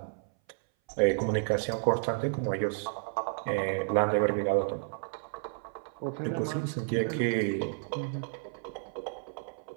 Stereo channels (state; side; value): silent; left; 57 dB below the other